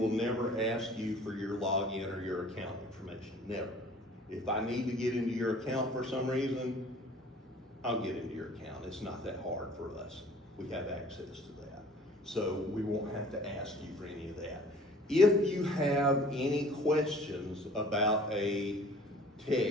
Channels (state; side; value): normal; both; correlation 0.50